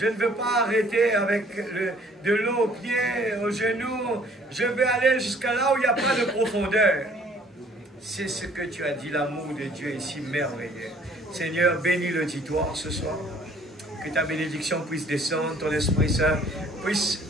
ne veux pas arrêter avec de l'eau aux pieds, aux genoux. Je veux aller jusqu'à là où il n'y a pas de profondeur. C'est ce que tu as dit, l'amour de Dieu est si merveilleux. Seigneur, bénis l'auditoire ce soir. Que ta bénédiction puisse descendre, ton Esprit Saint puisse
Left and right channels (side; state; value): both; normal; correlation 0.57